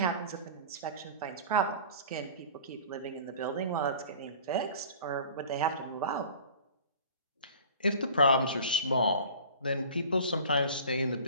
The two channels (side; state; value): both; inverted; correlation -0.43